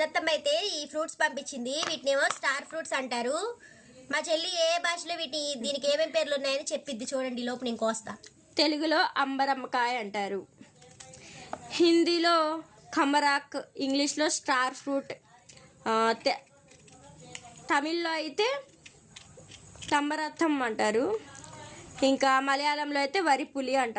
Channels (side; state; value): both; identical; correlation 1.00